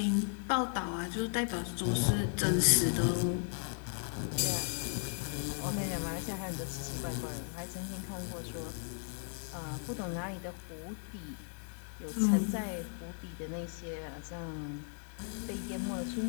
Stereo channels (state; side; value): silent; right; 54 dB below the other